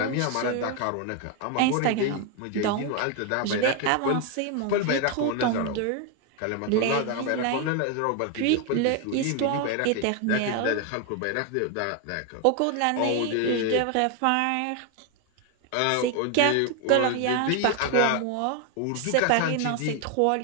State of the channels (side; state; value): both; different; correlation 0.01